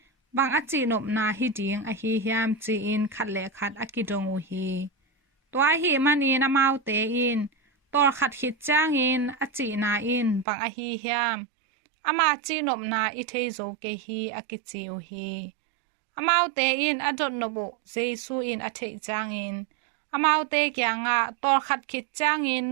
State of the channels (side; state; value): left; drops out; at 10.5 s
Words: bang achi nopna hi ding ahih hiam chi in khat le khat akidong hi tua hi man in Amaute in Tawlkhat khit ciangin achi na in bang ahih hiam ama chi nopna i thei zo ke hi akichi hi Amaute in adot nobu Jesu in athei ciangin Amaute kiangah Tawlkhat khit ciangin